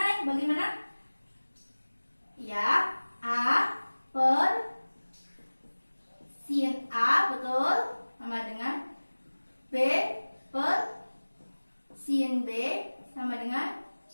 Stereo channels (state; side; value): inverted; both; correlation -1.00